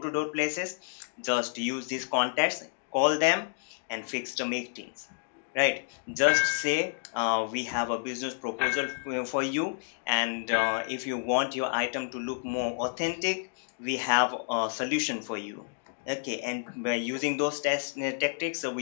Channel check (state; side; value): silent; right; digital silence